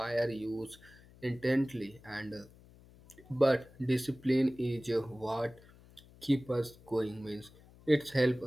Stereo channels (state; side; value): noise; left; hum, 24 dB below the sound